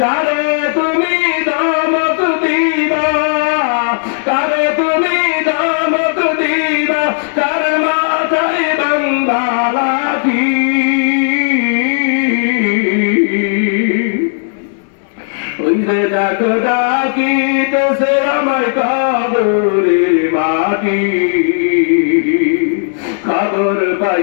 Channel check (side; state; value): right; silent; digital silence